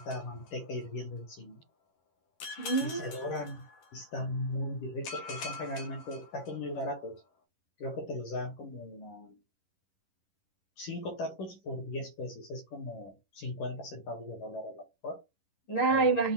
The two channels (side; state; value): right; late; 11 ms